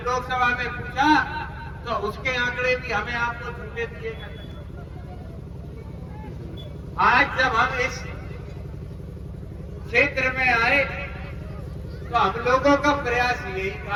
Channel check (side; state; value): both; identical; correlation 1.00